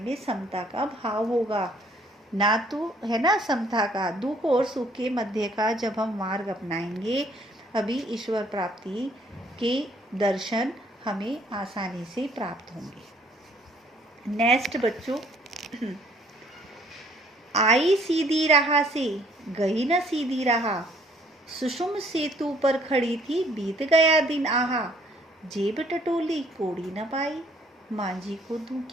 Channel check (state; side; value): normal; both; correlation 0.62